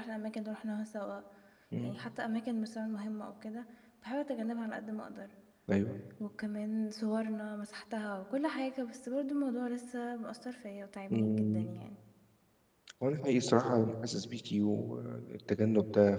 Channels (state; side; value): identical; both; correlation 1.00